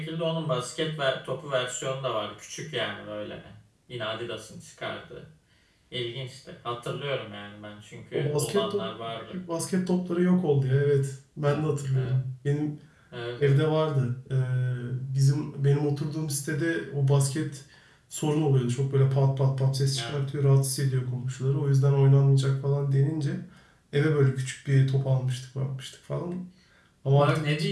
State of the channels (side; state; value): both; identical; correlation 1.00